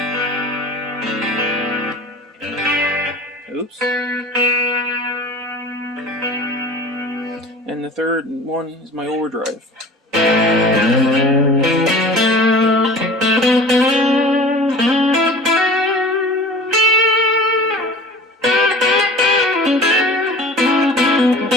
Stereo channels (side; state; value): both; normal; correlation 0.40